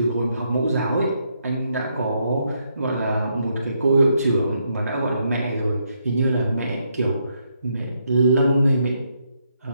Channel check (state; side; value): inverted; both; correlation -0.77